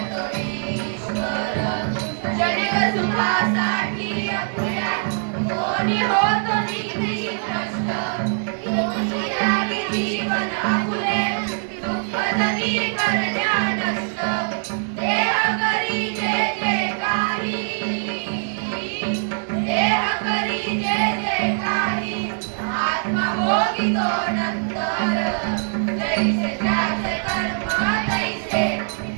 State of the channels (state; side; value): silent; left; 64 dB below the other